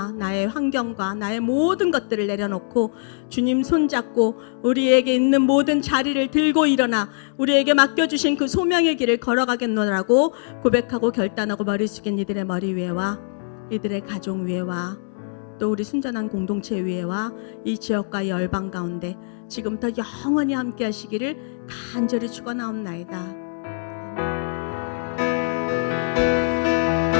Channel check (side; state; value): right; silent; digital silence